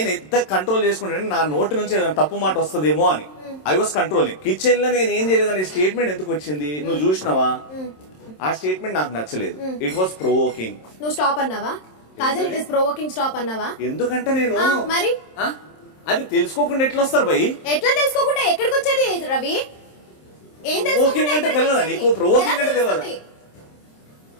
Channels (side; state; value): right; late; 27 ms